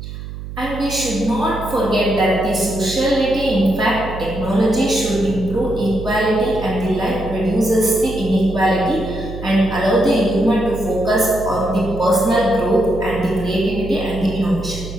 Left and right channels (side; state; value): right; noise; hum, 10 dB below the sound